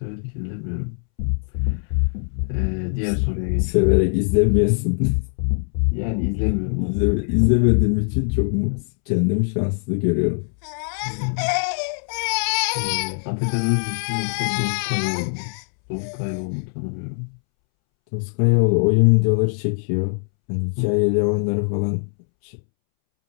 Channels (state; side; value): silent; right; 64 dB below the other